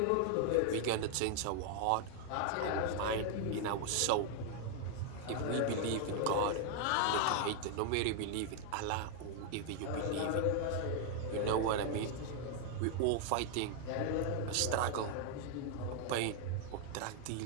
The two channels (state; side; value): different; both; correlation 0.00